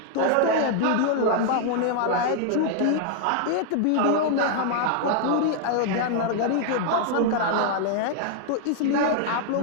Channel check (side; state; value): both; different; correlation -0.01